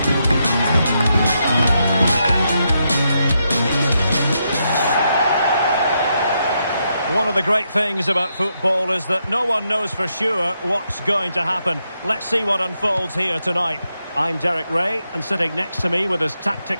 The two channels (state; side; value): inverted; both; correlation -0.81